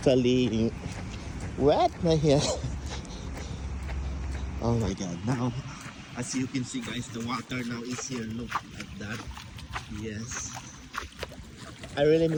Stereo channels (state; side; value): identical; both; correlation 1.00